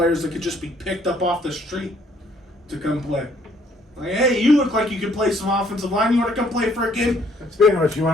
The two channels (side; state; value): both; normal; correlation 0.64